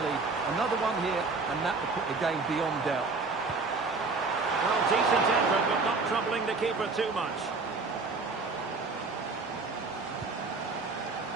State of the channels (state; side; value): quieter; left; 4.0 dB